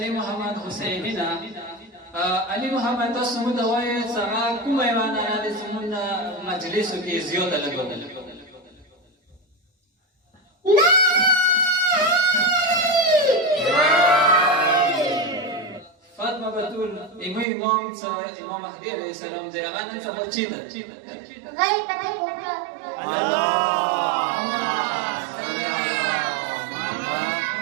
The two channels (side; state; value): left; drops out; at 17.4 s